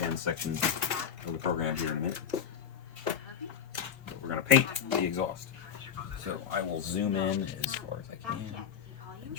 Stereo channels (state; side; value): quieter; right; 8.0 dB